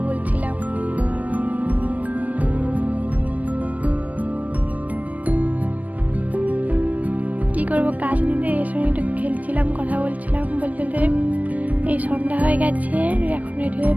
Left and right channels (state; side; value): late; left; 0.071 ms